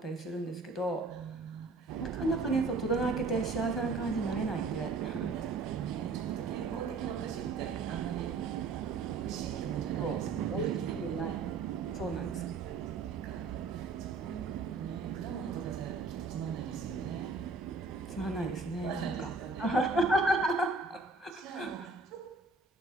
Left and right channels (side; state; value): left; quieter; 3.9 dB